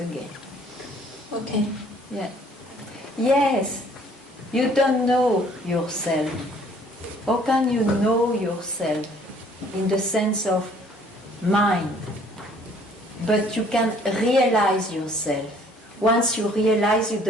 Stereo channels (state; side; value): normal; both; correlation 0.58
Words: Okay. Yeah. Yes. You don't know yourself. How can you know yourself in the sense of mind? But you can realize yourself. Once you realize, you